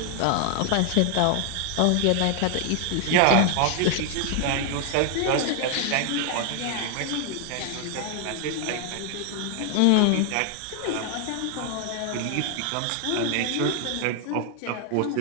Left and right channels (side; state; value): both; different; correlation 0.00